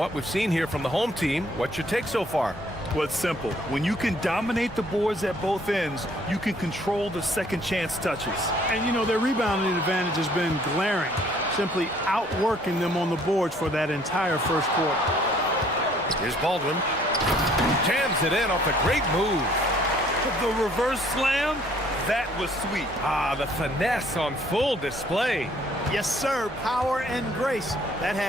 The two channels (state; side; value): normal; both; correlation 0.61